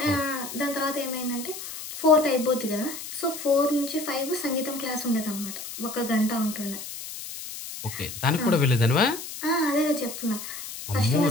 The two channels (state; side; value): noise; left; hiss, 10 dB below the sound